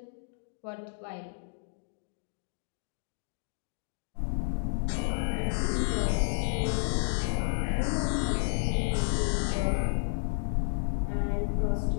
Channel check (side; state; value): right; silent; digital silence